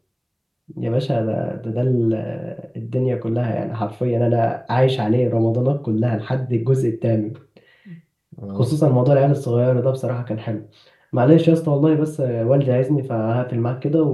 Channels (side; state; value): both; identical; correlation 1.00